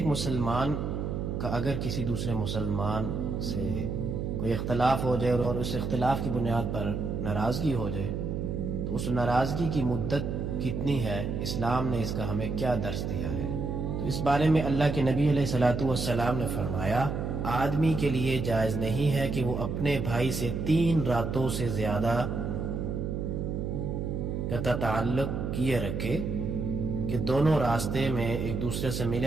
مسلمان کا اگر کسی دوسرے مسلمان سے کوئی اختلاف ہو جائے اور اس اختلاف کی بنیاد پر ناراضگی ہو جائے تو اس ناراضگی کی مدت کتنی ہے، اسلام نے اس کا ہمیں کیا درس دیا ہے؟ تو اس بارے میں اللہ کے نبی علیہ الصلوۃ والسلام نے فرمایا، آدمی کے لیے جائز نہیں ہے کہ وہ اپنے بھائی سے 3 راتوں سے زیادہ قطع تعلق کیے رکھے کہ دونوں راستے میں ایک دوسرے سے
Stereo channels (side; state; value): right; noise; hum, 2 dB below the sound